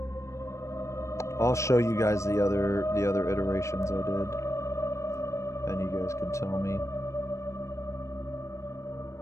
I'll show you guys the other iterations I did. And you guys can tell me.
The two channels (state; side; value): late; right; 0.14 ms